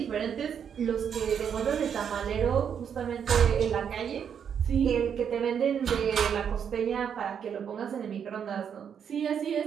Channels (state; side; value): quieter; left; 7.9 dB